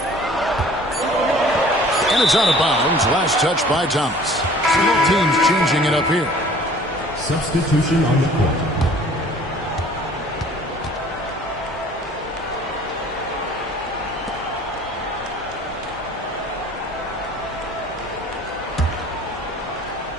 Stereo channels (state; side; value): normal; both; correlation 0.51